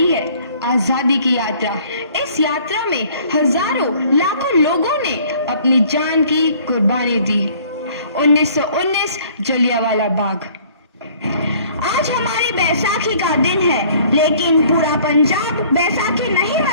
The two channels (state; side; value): inverted; both; correlation -0.56